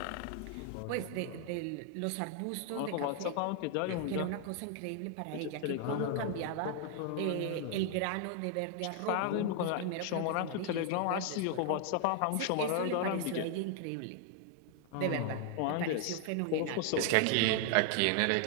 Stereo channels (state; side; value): different; both; correlation 0.00